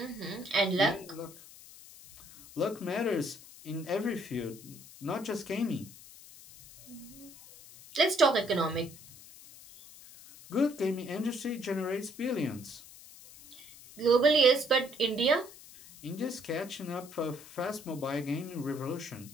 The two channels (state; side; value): noise; left; hiss, 19 dB below the sound